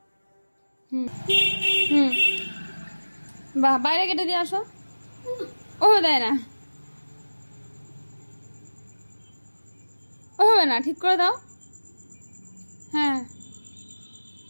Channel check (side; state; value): both; inverted; correlation -1.00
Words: হুম হুম, বাহ, বাইরে কেটে দিয়ে আসো। ও দেয় না, ও হবে না, ঠিক করে দাও। হ্যাঁ,